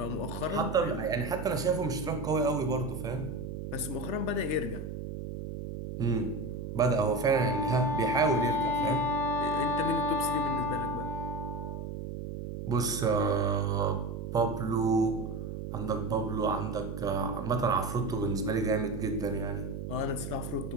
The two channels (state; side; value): noise; right; hum, 7 dB below the sound